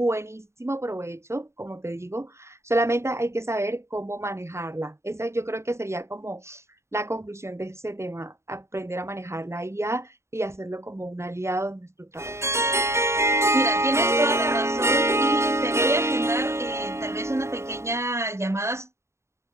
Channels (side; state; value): left; late; 0.13 ms